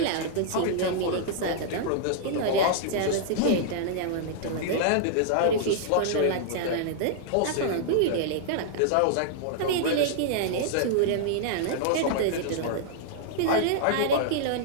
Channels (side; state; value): both; different; correlation -0.01